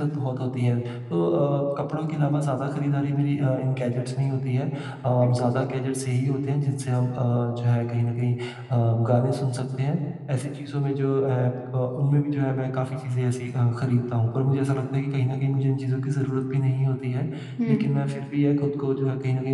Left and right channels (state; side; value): identical; both; correlation 1.00